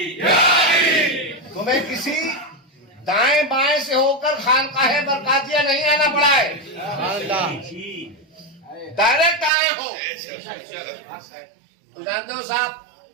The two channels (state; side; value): drops out; left; at 9.5 s